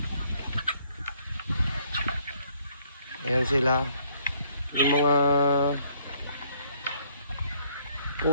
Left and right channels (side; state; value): both; inverted; correlation -0.65